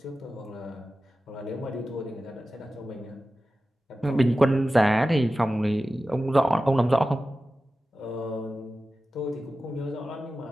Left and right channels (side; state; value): both; normal; correlation 0.94